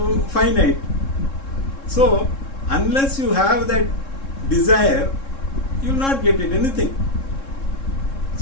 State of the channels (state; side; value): late; right; 3.7 ms